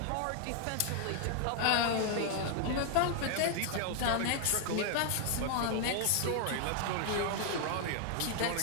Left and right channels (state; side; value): different; both; correlation 0.00